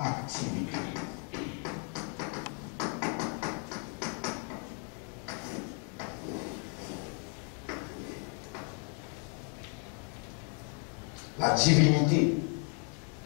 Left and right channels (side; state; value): right; quieter; 40.0 dB